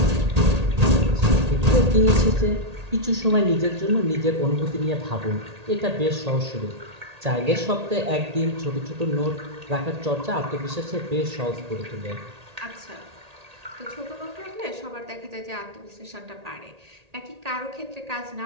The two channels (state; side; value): late; left; 1.8 ms